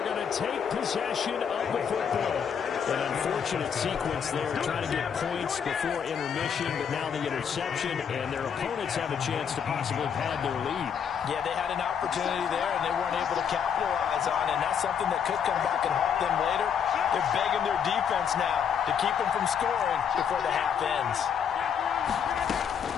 going to take possession of the football. An unfortunate sequence there, trying to get points before intermission, but now the interception, and their opponents have a chance to possibly pad their lead. Yeah, they had an opportunity there, and they weren't able to capitalize on it, and that's something that could come back and haunt them later. They're begging their defense now to keep them from scoring before the half ends.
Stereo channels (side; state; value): right; quieter; 7.6 dB